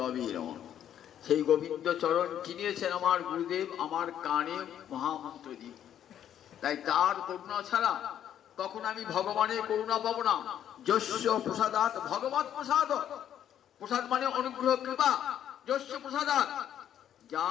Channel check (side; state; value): right; quieter; 10.2 dB